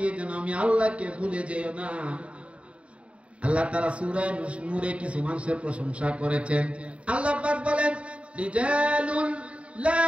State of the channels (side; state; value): left; late; 0.062 ms